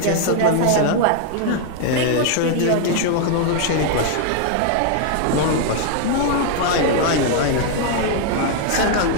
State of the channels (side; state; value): both; different; correlation 0.00